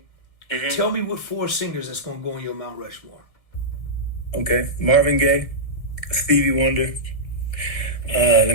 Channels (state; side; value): late; right; 1.6 ms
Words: Mm-hmm. Tell me what 4 singers that's gonna go on your Mount Rushmore. Okay. Marvin Gaye, Stevie Wonder.